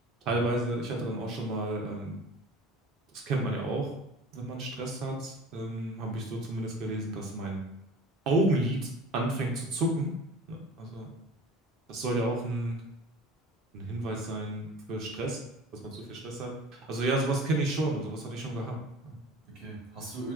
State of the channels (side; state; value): both; normal; correlation 0.42